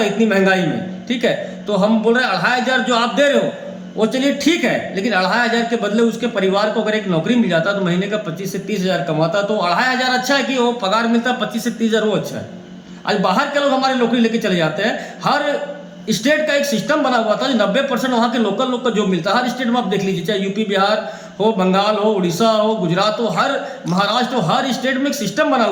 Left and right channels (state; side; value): identical; both; correlation 1.00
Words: है इतनी महंगाई में, ठीक है। तो हम बोल रहे हैं 2,500 जो आप दे रहे हो वो चलिए ठीक है, लेकिन 2,500 के बदले उसके परिवार को अगर एक नौकरी मिल जाता तो महीने का 25 से 30 हज़ार कमाता, तो 2,500 अच्छा है कि वो पगार मिलता 25 से 30 हज़ार, वो अच्छा है। आज बाहर के लोग हमारे नौकरी लेके चले जाते हैं। हर स्टेट का एक सिस्टम बना हुआ था जो 90% वहाँ के लोकल लोग का जॉब मिलता है। हर स्टेट में आप देख लीजिए, चाहे यूपी बिहार हो, बंगाल हो, उड़ीसा हो, गुजरात हो, हर महाराष्ट्र हो, हर स्टेट में एक सिस्टम बना